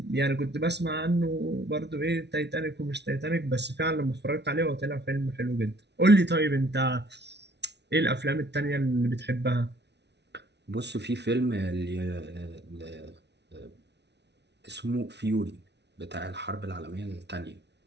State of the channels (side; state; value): left; late; 0.50 ms